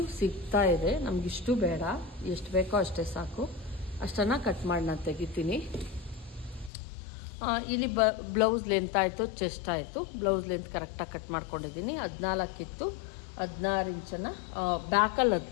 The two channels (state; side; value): drops out; right; at 6.7 s